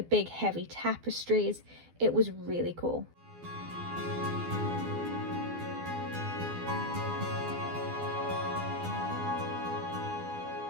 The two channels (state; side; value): late; left; 12 ms